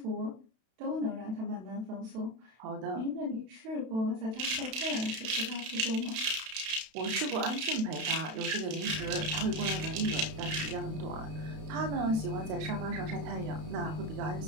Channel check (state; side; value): late; left; 32 ms